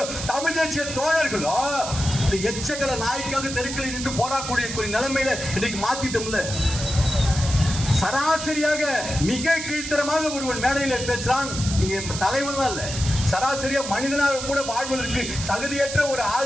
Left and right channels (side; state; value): right; noise; hiss, 7 dB below the sound